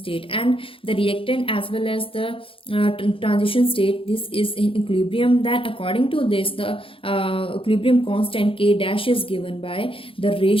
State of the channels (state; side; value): late; right; 0.26 ms